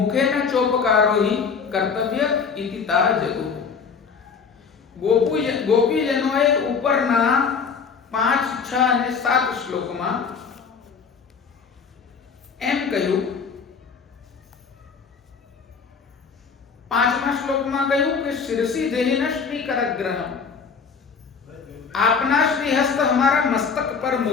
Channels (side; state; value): right; quieter; 5.8 dB